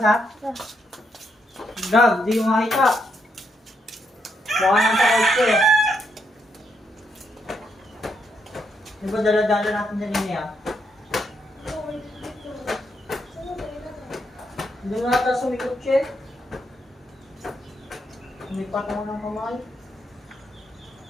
Gab, di mo makita. Mukha nang takot ko eh. Di ba dala-dala natin dyan niya? Hindi mo nata sumikot siya. Sumipat mo ng kamay.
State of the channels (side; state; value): both; normal; correlation 0.78